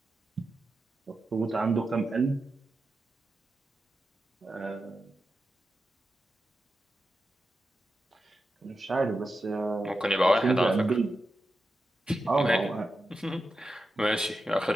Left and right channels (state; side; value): normal; both; correlation 0.90